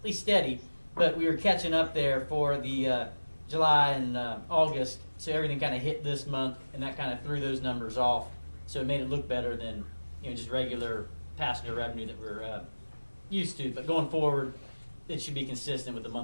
least steady, but we were catching up there for the July and August, so everything kind of hit this month, and that kind of threw those numbers off. So it made it look better than just regular passenger revenue that we're used to. But going forward, it should be consistent with the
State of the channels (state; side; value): inverted; both; correlation -1.00